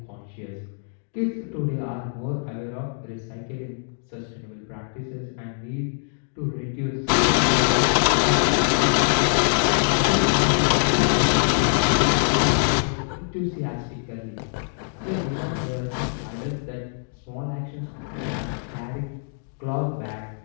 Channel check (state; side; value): silent; right; digital silence